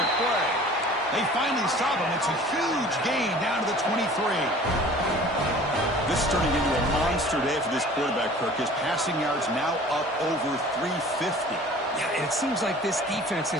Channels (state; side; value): normal; both; correlation 0.46